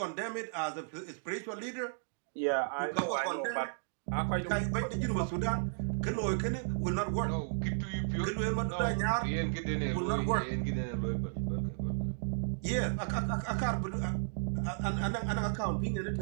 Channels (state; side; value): silent; left; digital silence